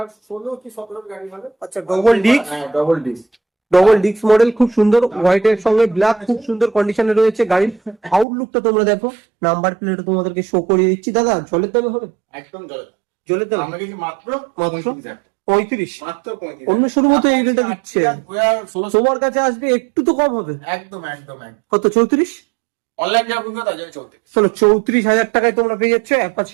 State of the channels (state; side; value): drops out; left; at 8.2 s